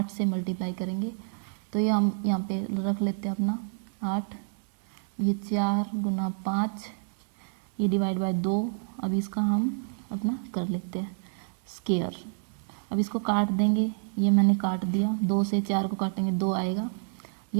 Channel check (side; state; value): left; silent; 59 dB below the other